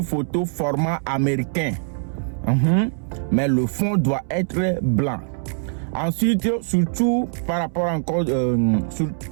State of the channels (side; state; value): left; silent; 62 dB below the other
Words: photo format américain. Mais le fond doit être blanc. Ensuite, surtout par rapport encore